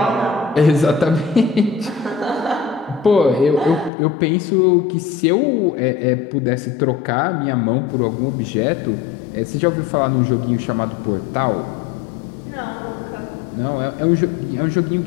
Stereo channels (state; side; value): drops out; right; at 3.9 s